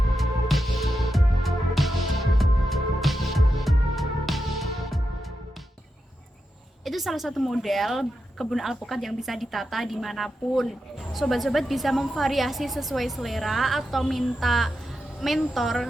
Itu salah satu model kebun alpukat yang bisa ditata dimanapun. Sobat-sobat bisa memvariasi sesuai selera atau minta mentor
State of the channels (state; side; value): normal; both; correlation 0.88